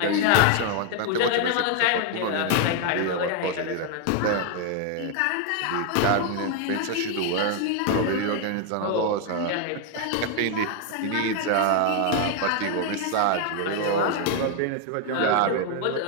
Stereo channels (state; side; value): different; both; correlation 0.01